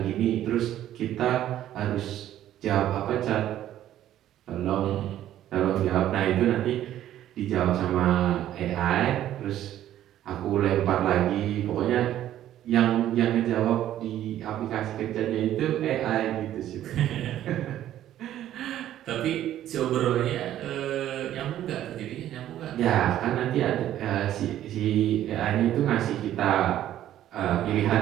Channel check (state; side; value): quieter; left; 12.2 dB